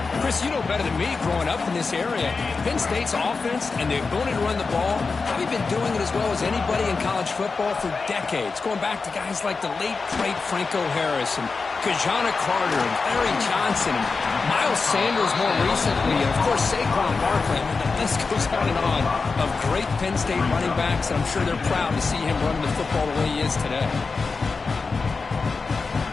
Chris, you know better than me growing up in this area. Penn State's offense and the ability to run the ball, probably been doing it as well as anybody in college football for decades. Going back to guys like the late, great Franco Harris and Kajana Carter and Larry Johnson and Miles Sanders more recently. And, of course, Saquon Barkley. I mean, the list goes on and on of great Penn State running backs. And I'm sure they're proud to see him running the football the way he is today.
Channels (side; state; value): right; quieter; 4.4 dB